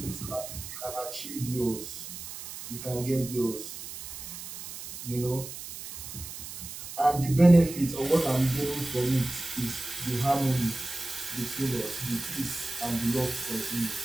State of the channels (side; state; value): right; noise; hiss, 10 dB below the sound